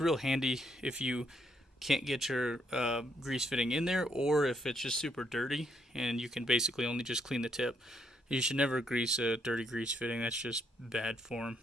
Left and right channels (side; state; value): both; normal; correlation 0.74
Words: handy if you can't get your grease fitting in there, or if it's just super dirty and you can basically only just clean the tip. You should never grease a dirty grease fitting. That's just bad form.